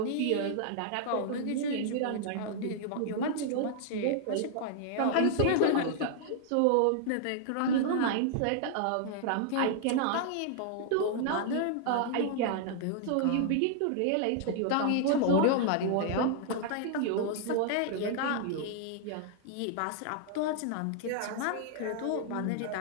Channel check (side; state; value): both; different; correlation -0.01